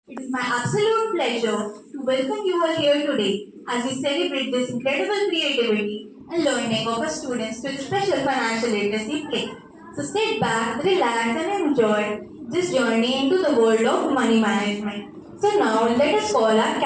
It is my absolute pleasure to welcome you all here today as we celebrate this incredible creativity and learning of our students to the special financial literacy play. So sit back, relax, and enjoy this journey into the world of money management. So now let us call our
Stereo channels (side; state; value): both; identical; correlation 1.00